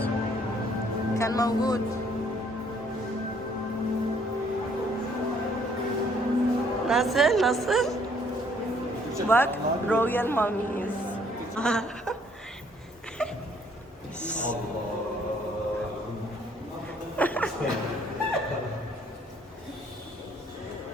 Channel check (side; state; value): both; normal; correlation 0.63